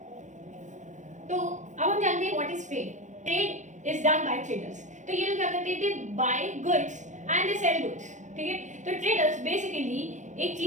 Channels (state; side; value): late; left; 0.35 ms